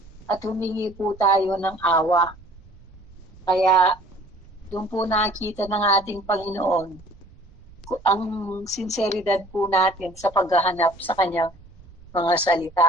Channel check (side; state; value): right; noise; rumble, 23 dB below the sound